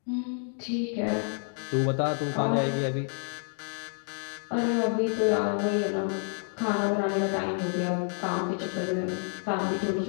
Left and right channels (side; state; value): right; silent; 59 dB below the other